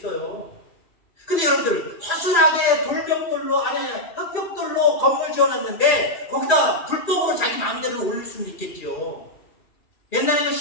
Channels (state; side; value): late; right; 2.4 ms